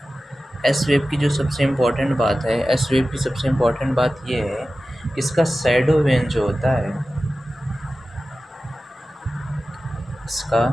वेव की जो सबसे इम्पोर्टेंट बात है, एस वेव की सबसे इम्पोर्टेंट बात ये है कि इसका शैडो वेन जो होता है, इसका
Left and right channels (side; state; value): both; normal; correlation 0.95